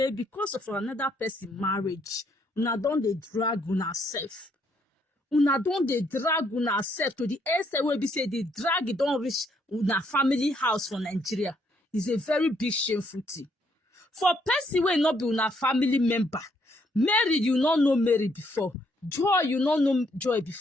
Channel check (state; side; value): normal; both; correlation 0.71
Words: because of another person marriage, una don dey drag una self. Una don dey drag una self to the extent where be say the drag don reach una family house for Nigeria. It's a very big shameful thing. For person wey not be una family member, Mary, you not know Mary before. Joy, you not know Joy